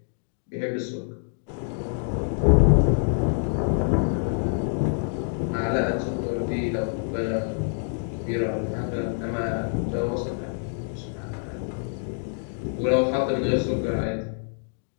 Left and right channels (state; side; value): silent; right; digital silence